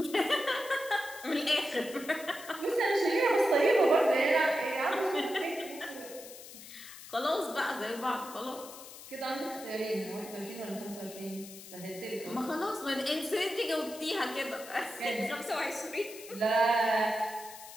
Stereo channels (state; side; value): noise; left; hiss, 15 dB below the sound